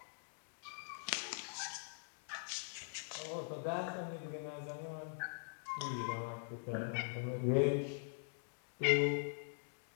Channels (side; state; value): right; silent; digital silence